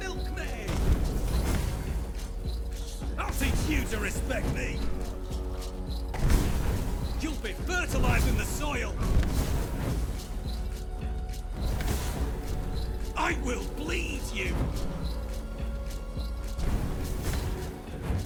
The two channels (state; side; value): identical; both; correlation 1.00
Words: I'll teach you to respect me! You'll be fertilizing the soil! I will bleed you!